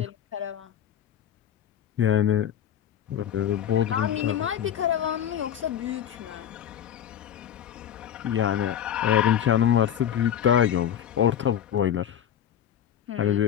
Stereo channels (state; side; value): quieter; right; 9.8 dB